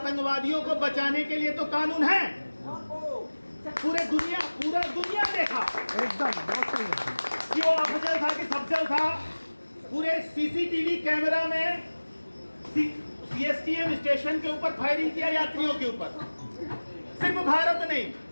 को बचाने के लिए तो कानून है, पूरा दुनिया देखा एकदम बहुत सही है कि वो अफजल था कि सफजल था, पूरे सीसीटीवी कैमरा में सीएसटीएम स्टेशन के ऊपर फायरिंग किया यात्रियों के ऊपर। सिर्फ भारत नहीं,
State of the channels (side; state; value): both; inverted; correlation -1.00